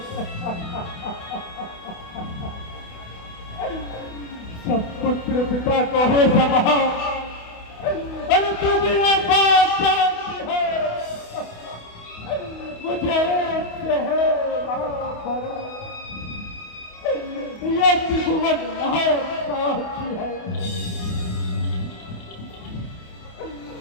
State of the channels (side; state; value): right; late; 28 ms